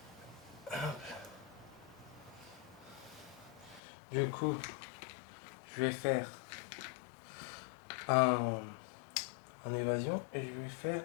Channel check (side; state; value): right; drops out; at 3.8 s